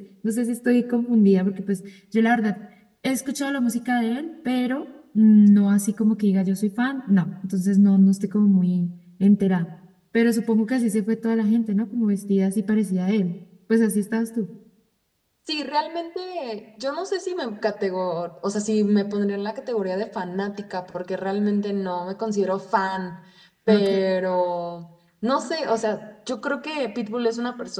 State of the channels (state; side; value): identical; both; correlation 1.00